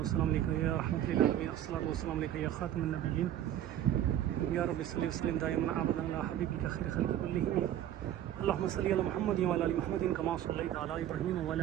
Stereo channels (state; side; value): quieter; left; 11.6 dB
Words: वस्सलामु अलैका या रहमतुल लिल आलमीन अस्सलातु वस्सलामु अलैका या खातमुन नबिय्यीन या रब्बि सल्लि वसल्लिम दाइमन अबदन अला हबीबिका खैर खल्क़ि कुल्लिहिम अल्लाहुम्मा सल्लि अला मुहम्मद व अला आलि मुहम्मद कमा सल्लैता अला इब्राहीम व अला